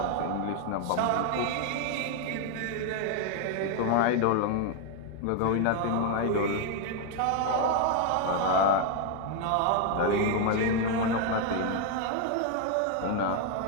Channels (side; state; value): both; different; correlation 0.00